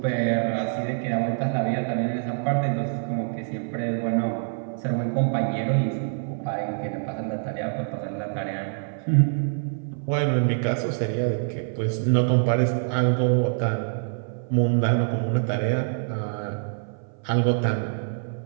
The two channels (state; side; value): silent; left; 57 dB below the other